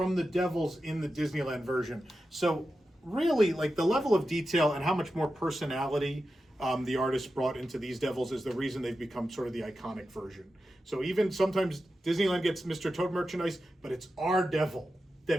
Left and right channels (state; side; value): normal; both; correlation 0.91